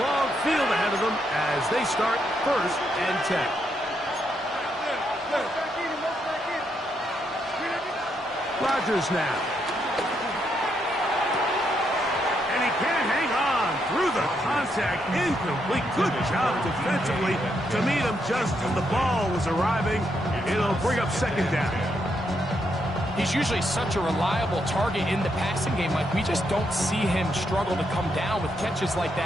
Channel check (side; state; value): both; normal; correlation 0.78